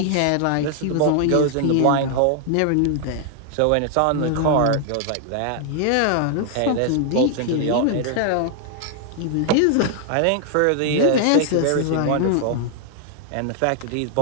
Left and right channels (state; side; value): different; both; correlation 0.00